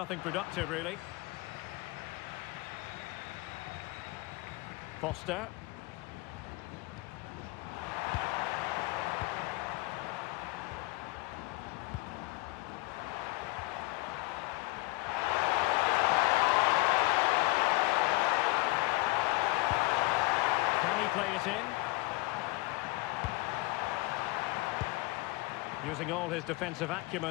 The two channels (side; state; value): right; quieter; 22.0 dB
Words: productive, really. Foster. Can he play it in? Using all his defensive